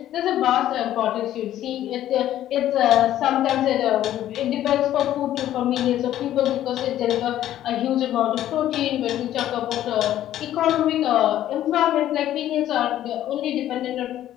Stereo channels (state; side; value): quieter; right; 12.5 dB